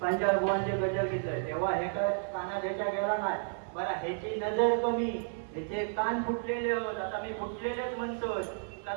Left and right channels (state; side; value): silent; left; 56 dB below the other